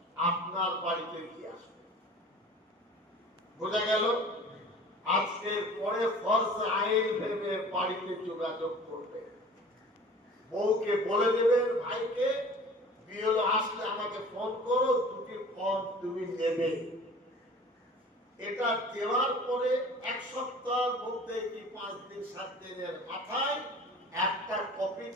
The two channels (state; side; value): normal; both; correlation 0.44